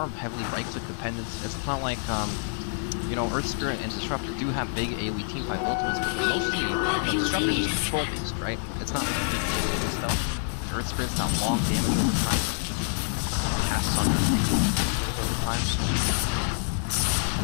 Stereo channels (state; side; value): silent; right; digital silence